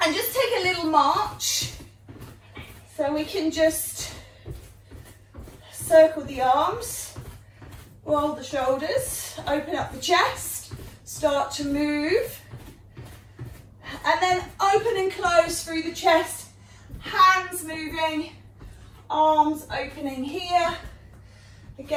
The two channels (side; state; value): both; identical; correlation 1.00